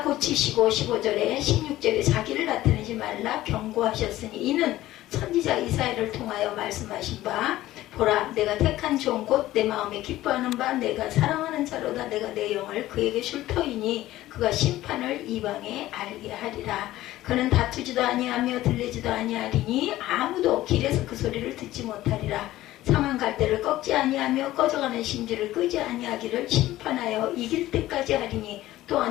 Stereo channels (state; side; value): quieter; right; 15.5 dB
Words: 고치시고 15절에 16절에 자기를 나타내지 말라 경고하셨으니 이는 선지자 이사야를 통하여 말씀하신 바 보라 내가 택한 종 곧 내 마음에 기뻐하는 바 내가 사랑하는 자로다 내가 내 영을 그에게 줄 터이니 그가 심판을 이방에 알게 하리라. 그는 다투지도 아니하며 들리지도 아니하리니 아무도 길에서 그 소리를 듣지 못하리라. 상한 갈대를 꺾지 아니하며 꺼져가는 심지를 끄지 아니하기를 심판하여 이길 때까지 하리니